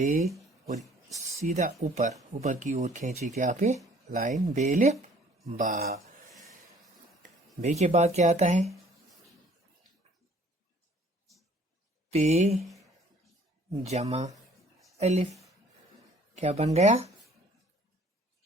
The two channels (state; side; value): normal; both; correlation 0.56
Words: اور سیدھا اوپر کی اور کھینچی کے آپ لائن بے الف با۔ بے کے بعد کیا آتا ہے؟ پے جمع الف، کیا بن گیا؟